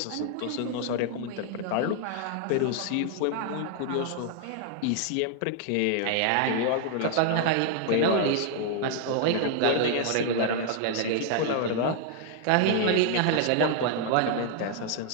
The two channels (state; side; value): different; both; correlation 0.00